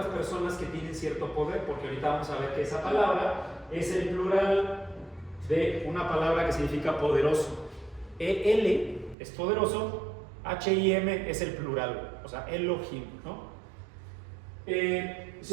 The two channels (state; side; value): drops out; left; at 9.2 s